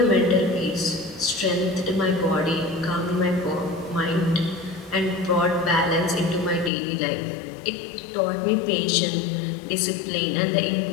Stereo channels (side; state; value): right; drops out; at 6.7 s